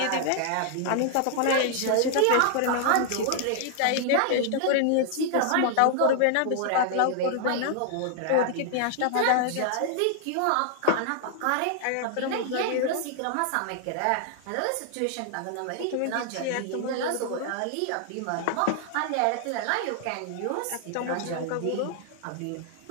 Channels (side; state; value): both; different; correlation 0.00